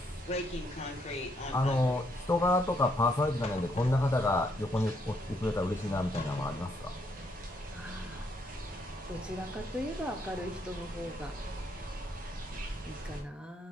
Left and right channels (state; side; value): normal; both; correlation 0.73